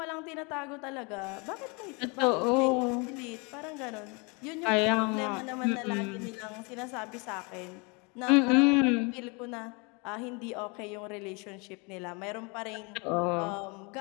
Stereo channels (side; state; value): right; quieter; 30.3 dB